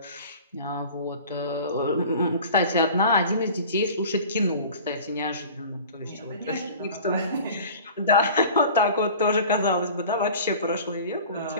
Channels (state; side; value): inverted; both; correlation -0.42